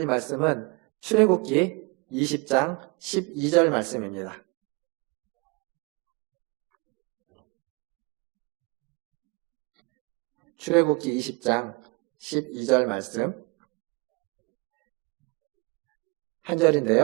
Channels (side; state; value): left; quieter; 28.9 dB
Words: 말씀은 출애굽기 20장 12절 말씀입니다. 출애굽기 20장 12절 말씀 한